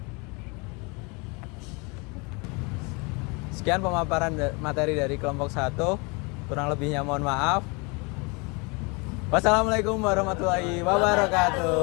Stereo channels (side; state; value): right; quieter; 29.7 dB